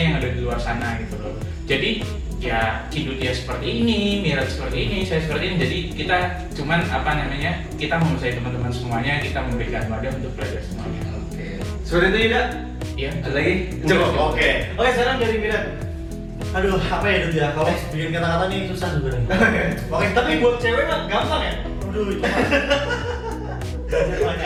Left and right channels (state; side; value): identical; both; correlation 1.00